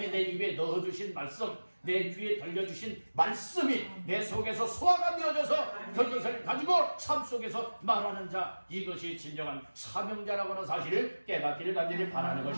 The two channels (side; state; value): both; inverted; correlation -1.00